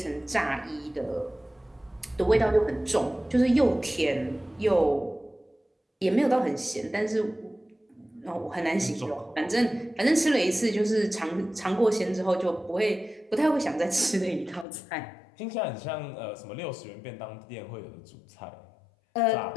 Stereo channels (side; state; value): right; drops out; at 14.7 s